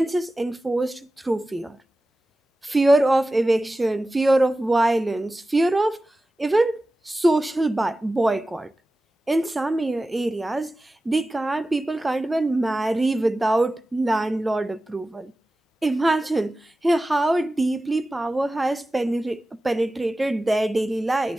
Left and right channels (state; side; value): normal; both; correlation 0.95